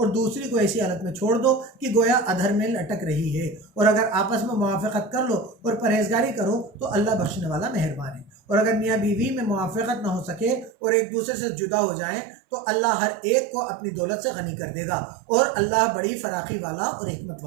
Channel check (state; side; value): drops out; left; at 10.7 s